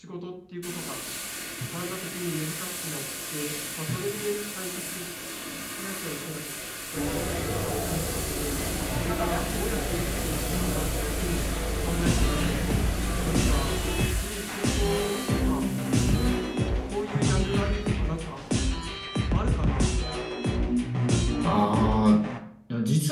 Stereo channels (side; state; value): both; identical; correlation 1.00